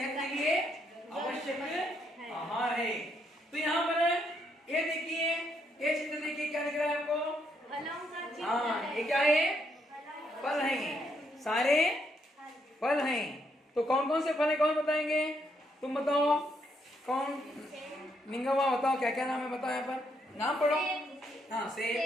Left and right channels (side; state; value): both; normal; correlation 0.75